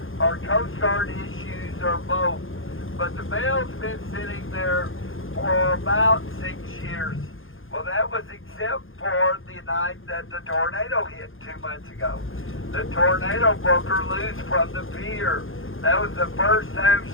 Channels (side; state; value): right; late; 0.59 ms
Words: or Coast Guard issues or both. But the Belle's been sitting there for about 6 years. Well, that was except for the night that the tornado hit 2 months ago. The tornado broke her loose from the pier. That was the first time